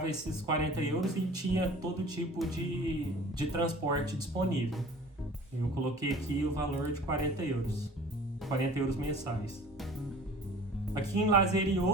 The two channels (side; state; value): both; normal; correlation 0.44